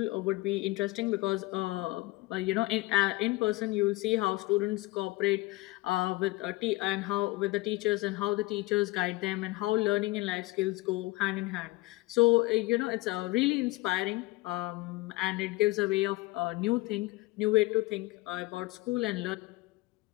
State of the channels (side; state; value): right; quieter; 21.0 dB